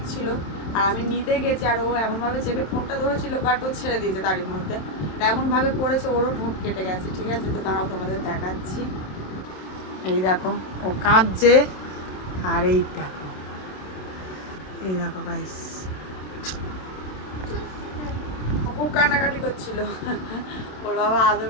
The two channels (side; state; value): right; late; 27 ms